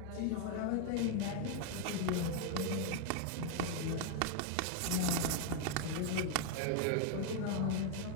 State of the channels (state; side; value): different; both; correlation 0.00